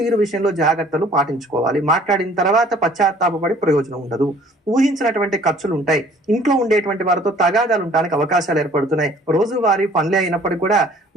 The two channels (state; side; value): normal; both; correlation 0.55